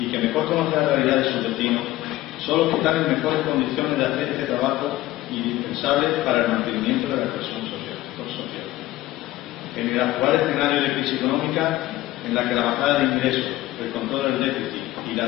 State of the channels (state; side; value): quieter; right; 16.4 dB